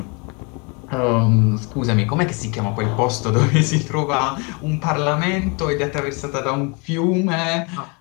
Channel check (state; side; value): quieter; right; 31.7 dB